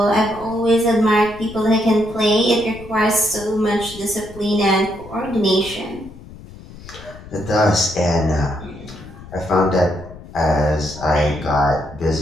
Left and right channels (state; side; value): noise; left; rumble, 17 dB below the sound